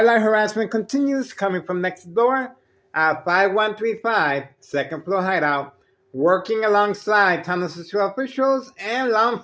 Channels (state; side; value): identical; both; correlation 1.00